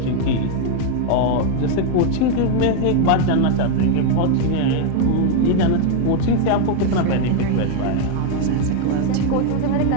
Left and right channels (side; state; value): both; different; correlation 0.01